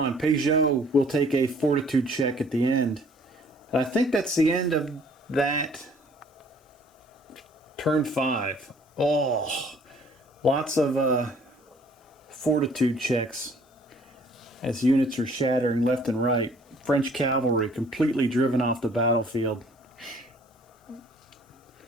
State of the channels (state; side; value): normal; both; correlation 0.57